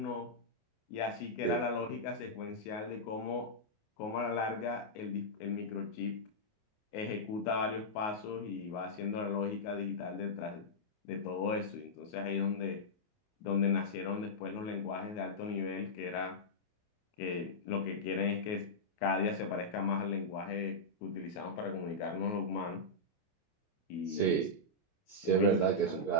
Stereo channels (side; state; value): right; late; 28 ms